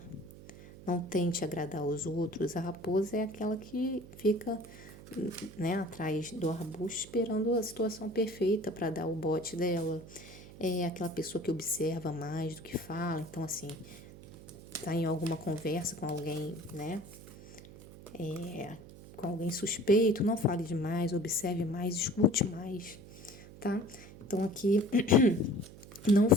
não tente agradar os outros. A raposa é aquela que fica, né, atrás do arbusto esperando a situação perfeita para dar o bote dela. É aquela pessoa que observa mais do que fala. Então, assim, tá em alguma conversa com alguém, né, com alguém suspeito, não fale demais, observe mais, escute mais, tá? Então, aqui não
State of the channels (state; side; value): noise; right; hum, 17 dB below the sound